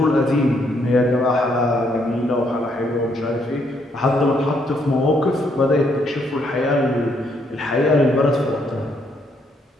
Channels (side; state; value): both; normal; correlation 0.72